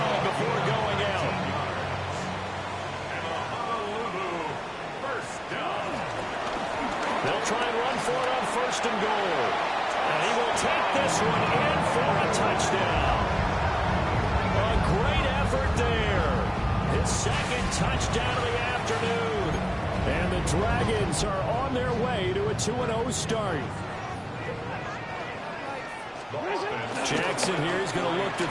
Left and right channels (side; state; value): both; identical; correlation 1.00